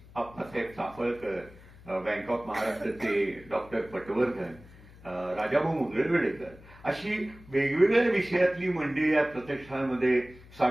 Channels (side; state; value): left; noise; hum, 21 dB below the sound